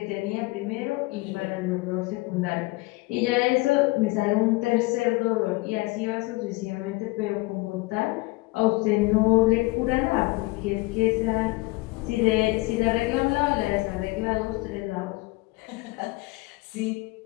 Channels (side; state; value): right; quieter; 23.1 dB